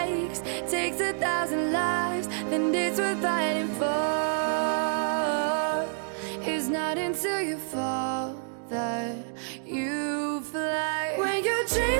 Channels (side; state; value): left; silent; digital silence